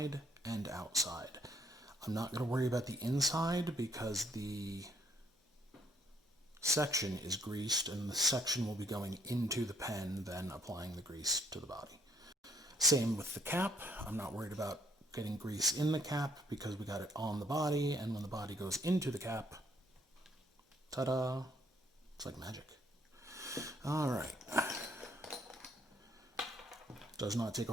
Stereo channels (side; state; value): both; normal; correlation 0.68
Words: and outside. I'm not going to worry about the inside because the section is greased and the section will be going into the pen, then applying the grease to the body. Same with the cap. I'm not worried about getting grease in the cap because we got it on the body, and when the body goes into the cap, ta-da, it's like magic. All right. Does not take a